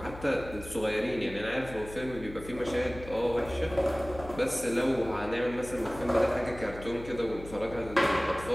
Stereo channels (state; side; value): noise; left; hum, 14 dB below the sound